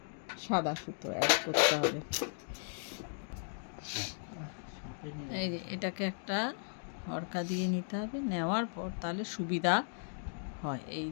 সাদা সুতো অ্যাড করতে হবে। এই যে এটাকে একটা হরকা দিয়ে নিতে হবে, নেওয়ার পর তাহলে সুবিধা হয়। এই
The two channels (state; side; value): silent; right; digital silence